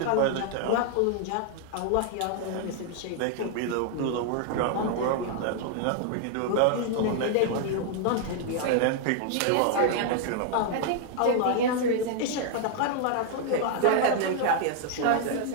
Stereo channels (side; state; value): both; different; correlation 0.00